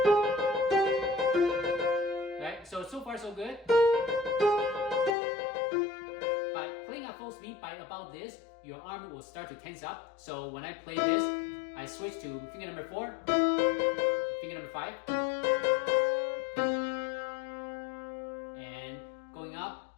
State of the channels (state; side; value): drops out; right; at 5.2 s